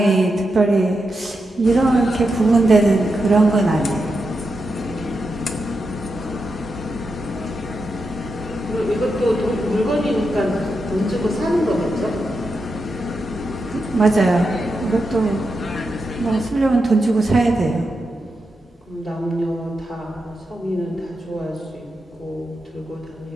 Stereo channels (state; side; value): normal; both; correlation 0.87